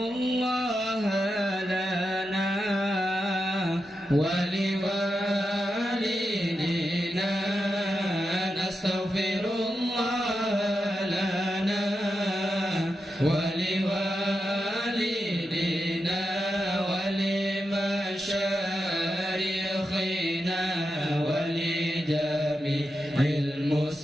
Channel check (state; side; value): normal; both; correlation 0.88